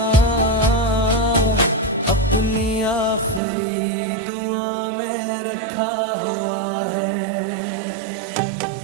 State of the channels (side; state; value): left; drops out; at 3.4 s